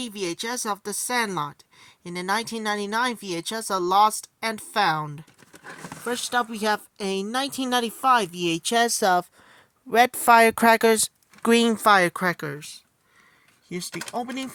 VHS of The Sandlot. In the 1999 VHS of Lost and Found. First up, we have a 1995 VHS of red firecrackers, green firecrackers. Here's the opening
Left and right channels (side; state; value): both; identical; correlation 1.00